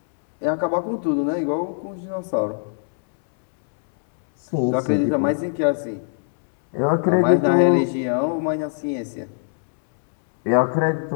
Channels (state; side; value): silent; right; 65 dB below the other